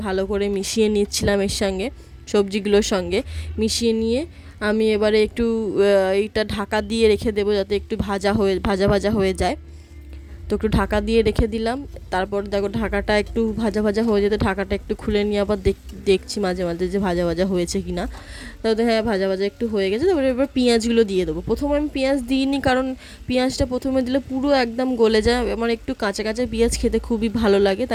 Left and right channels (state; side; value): identical; both; correlation 1.00